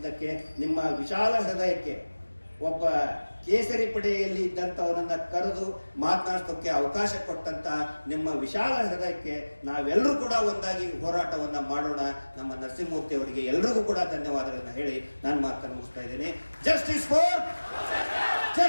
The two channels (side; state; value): both; inverted; correlation -1.00